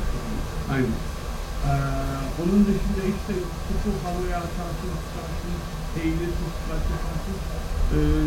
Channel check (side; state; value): both; identical; correlation 1.00